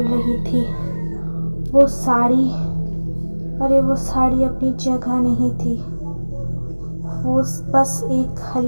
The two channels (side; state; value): both; inverted; correlation -1.00